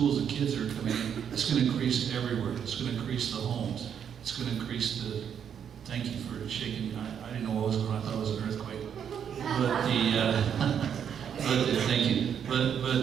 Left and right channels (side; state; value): left; quieter; 8.2 dB